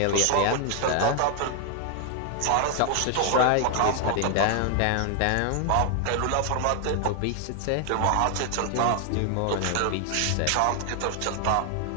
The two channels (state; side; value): different; both; correlation 0.00